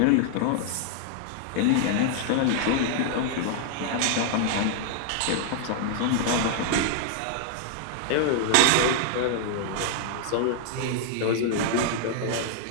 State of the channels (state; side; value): different; both; correlation 0.00